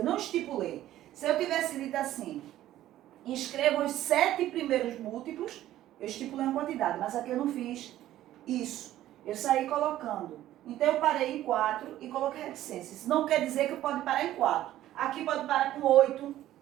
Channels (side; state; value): left; quieter; 13.6 dB